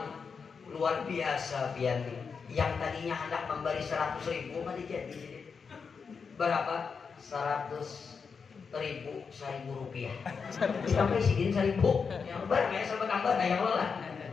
luar biasa pian. Yang tadinya hendak memberi 100.000 pada jadi berapa? 100.000 rupiah. Sampai sidin 1.000. Yang banyak sampai tambah daya lelah.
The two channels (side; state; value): right; quieter; 5.6 dB